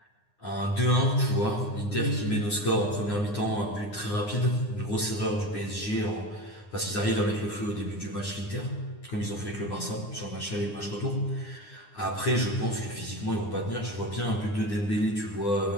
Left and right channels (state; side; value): late; right; 9.7 ms